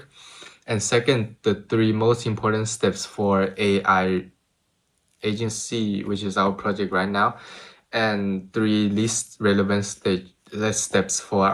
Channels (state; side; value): identical; both; correlation 1.00